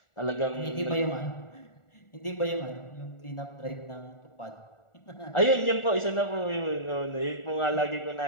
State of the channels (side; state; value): right; late; 1.4 ms